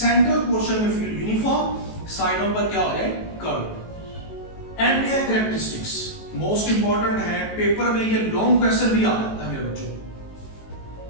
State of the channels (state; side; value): late; right; 18 ms